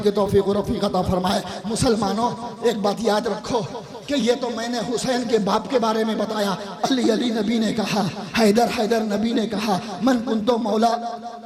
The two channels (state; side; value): identical; both; correlation 1.00